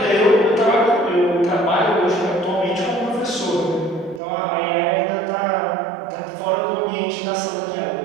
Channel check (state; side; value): drops out; left; at 4.2 s